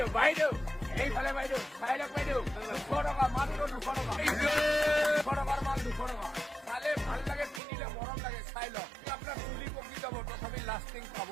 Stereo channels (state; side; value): drops out; left; at 7.6 s